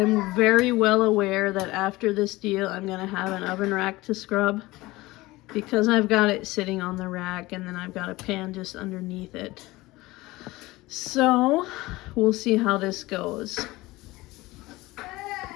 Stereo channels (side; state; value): right; quieter; 19.9 dB